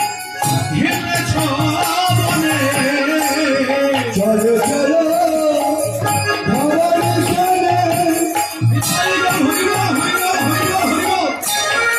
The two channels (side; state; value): both; identical; correlation 1.00